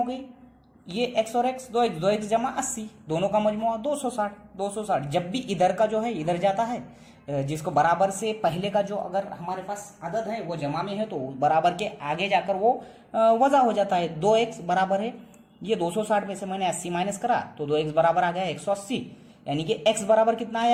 गई, ये x और x, 2x जमा 80, दोनों का मजमुआ 260। जब भी इधर का जो है इधर जाता है, जिसको बराबर से पहले का जो अगर हमारे पास अदद है वो जमा में है, तो बराबर के आगे जाकर वो वजा हो जाता है। 2x बराबर है, ये 260 में से मैंने 80 माइनस करा, तो 2x बराबर आ गया 180, यानी कि x बराबर कितना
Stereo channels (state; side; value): identical; both; correlation 1.00